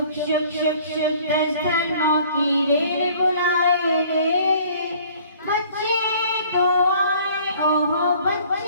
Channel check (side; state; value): both; inverted; correlation -0.54